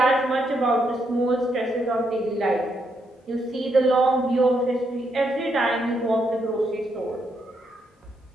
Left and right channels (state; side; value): normal; both; correlation 0.78